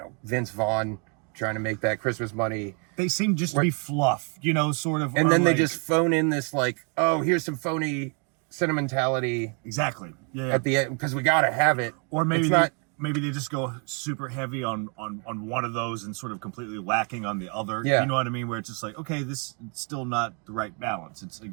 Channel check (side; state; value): left; quieter; 36.9 dB